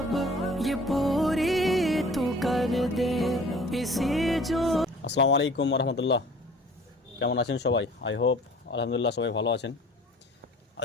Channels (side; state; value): both; normal; correlation 0.48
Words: ये पूरी तू कर दे इसी जो। আসসালামু আলাইকুম রহমতুল্লাহ, কেমন আছেন সবাই? আই হোপ আলহামদুলিল্লাহ সবাই ভালো আছেন।